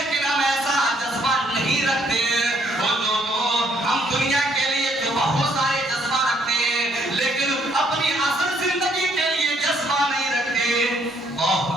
ہم ایسا جذبہ نہیں رکھتے۔ وہ لوگوں، ہم دنیا کے لیے تو بہت سارے جذبہ رکھتے ہیں، لیکن اپنی اصل زندگی کے لیے جذبہ نہیں رکھتے۔ اور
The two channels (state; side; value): normal; both; correlation 0.68